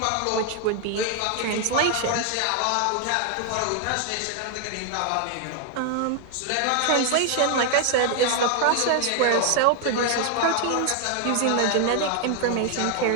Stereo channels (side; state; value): both; different; correlation 0.00